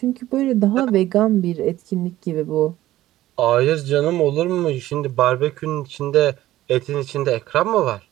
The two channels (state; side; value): quieter; left; 14.9 dB